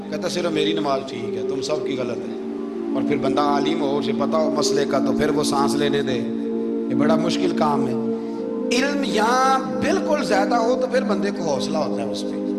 کہتا صرف میری نماز ٹھیک ہے، تم سب کی غلط ہے، اور پھر بندہ عالم ہو، اسے پتہ ہو مسئلے کا، تو پھر وہ سانس لینے دے، یہ بڑا مشکل کام ہے۔ علم یہاں بالکل زیادہ ہو تو پھر بندے کو حوصلہ ہوتا ہے، اس پہ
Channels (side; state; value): both; identical; correlation 1.00